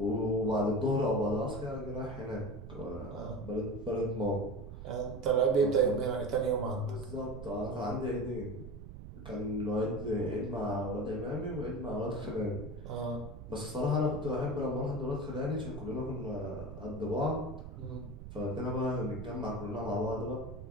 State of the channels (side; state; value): right; noise; rumble, 11 dB below the sound